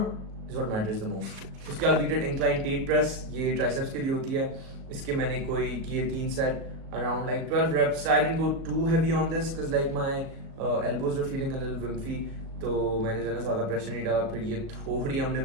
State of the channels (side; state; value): left; late; 37 ms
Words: is what matters the most. उसके बाद we did incline tate press. ये triceps के लिए होती है. इसके मैंने कोई किए 3 set around like 12 reps. I didn't go too heavy on this because like my elbows were feeling a little wimpy. तो मैंने जो है ज़्यादा प्रेशर नहीं डाला. फिर ये थोड़ी हमने